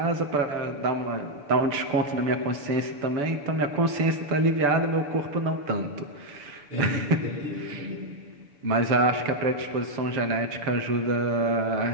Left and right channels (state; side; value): late; left; 6.9 ms